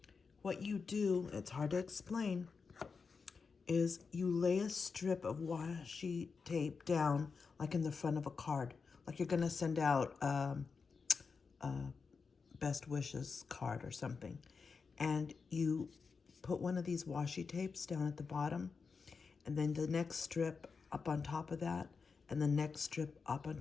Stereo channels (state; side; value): quieter; right; 5.1 dB